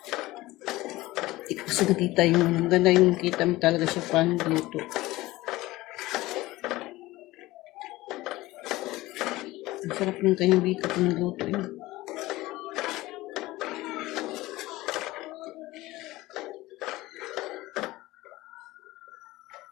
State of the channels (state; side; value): quieter; right; 18.6 dB